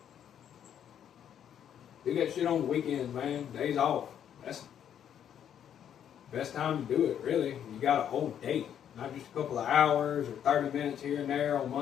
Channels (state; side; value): quieter; right; 9.4 dB